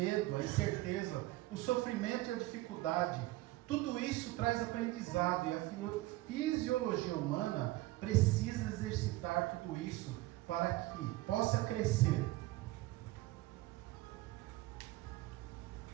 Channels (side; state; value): left; quieter; 18.5 dB